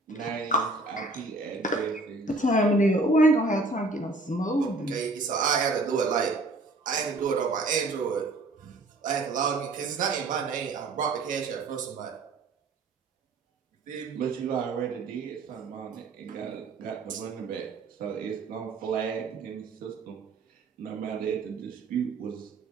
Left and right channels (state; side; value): quieter; left; 3.1 dB